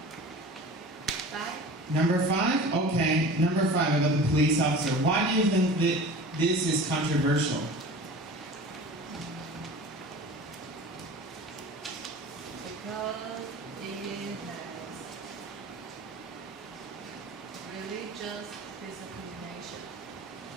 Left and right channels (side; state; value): both; normal; correlation 0.38